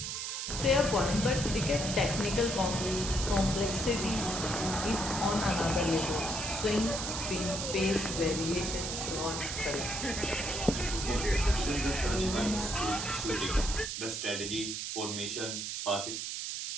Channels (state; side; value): noise; right; hiss, 4 dB below the sound